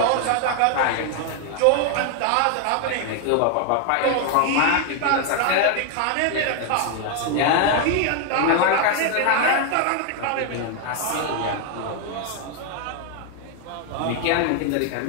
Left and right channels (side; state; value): both; different; correlation 0.00